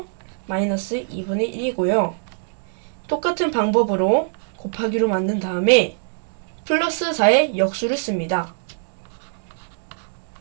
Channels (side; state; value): left; silent; digital silence